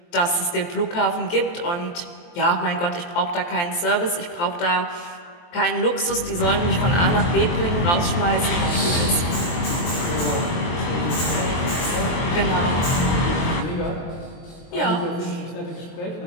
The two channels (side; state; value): right; late; 23 ms